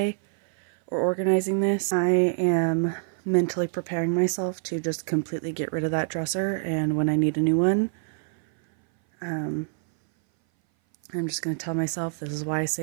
or organizing this. I am mentally preparing myself to just completely get rid of that dresser, and when I need a new one, I'm just going to tell myself this is why I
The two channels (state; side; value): silent; left; 58 dB below the other